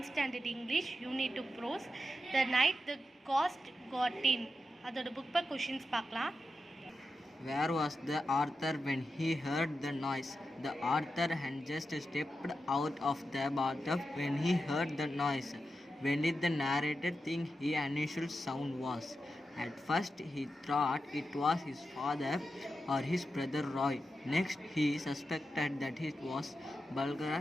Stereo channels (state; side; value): normal; both; correlation 0.89